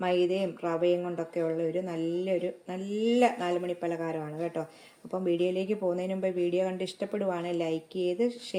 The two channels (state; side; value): identical; both; correlation 1.00